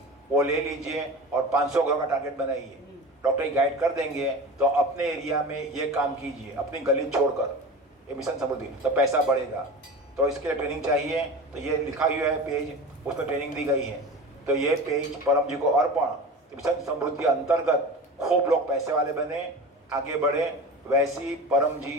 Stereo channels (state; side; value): normal; both; correlation 0.32